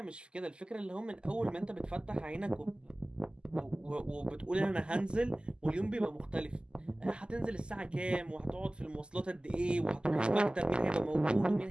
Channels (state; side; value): late; left; 0.049 ms